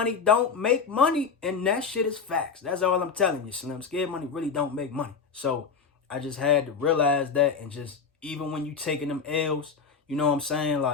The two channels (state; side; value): quieter; right; 5.7 dB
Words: don't make money, and that shit is facts. That's all I'm telling you, Slim. Scared money really don't make money. So I just had to realize that, and just, even when you taking them L's, you know what I'm saying?